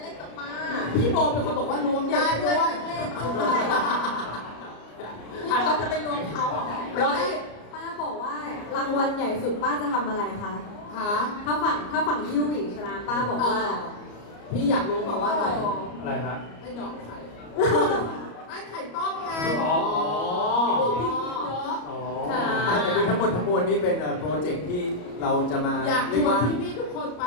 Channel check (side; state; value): right; late; 34 ms